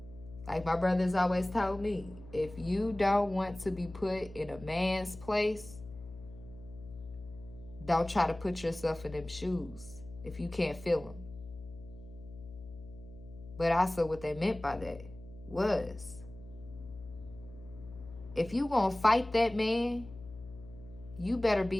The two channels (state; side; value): noise; left; hum, 16 dB below the sound